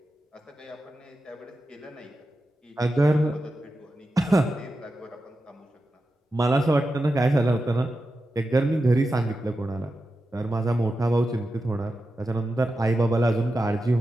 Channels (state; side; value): normal; both; correlation 0.91